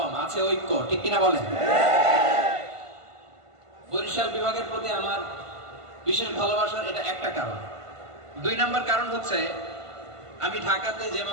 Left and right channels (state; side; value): late; left; 1.5 ms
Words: আছে ঐক্য, ঠিক কিনা বলেন? বরিশাল বিভাগের প্রতি আমার বিশেষ ভালোবাসার এটা একটা কারণ। 2 নম্বর কারণ হচ্ছে আমি ঢাকাতে যে